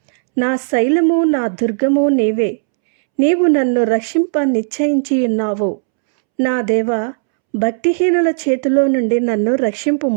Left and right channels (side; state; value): left; silent; 69 dB below the other